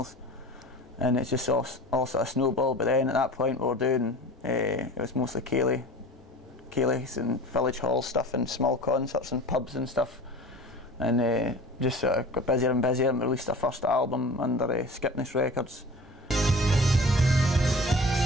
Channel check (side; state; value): both; normal; correlation 0.40